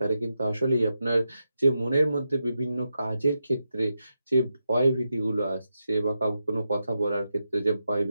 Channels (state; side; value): inverted; both; correlation -0.87